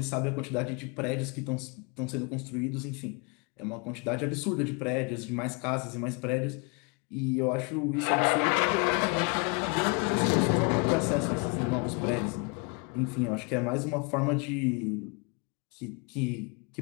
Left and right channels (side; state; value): right; quieter; 33.2 dB